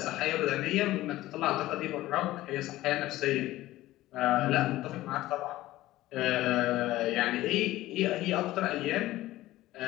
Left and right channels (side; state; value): right; quieter; 16.3 dB